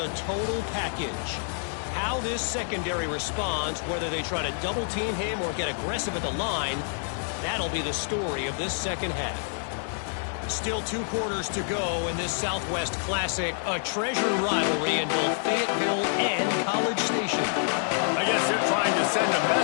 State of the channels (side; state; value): right; silent; 60 dB below the other